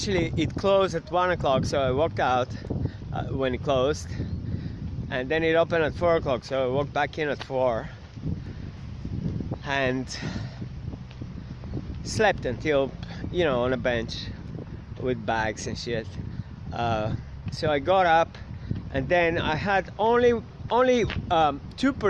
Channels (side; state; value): both; identical; correlation 1.00